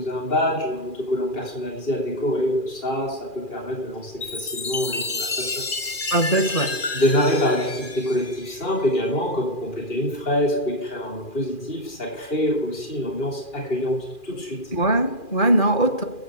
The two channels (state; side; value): late; right; 2.4 ms